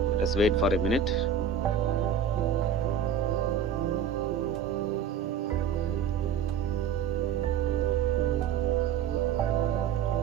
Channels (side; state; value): left; quieter; 7.3 dB